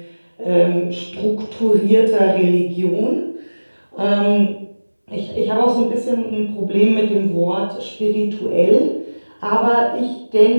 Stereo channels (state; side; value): inverted; both; correlation -1.00